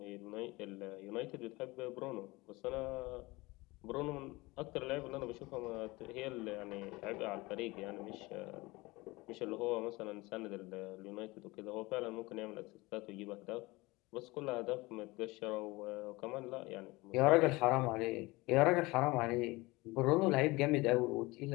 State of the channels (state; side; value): quieter; right; 22.3 dB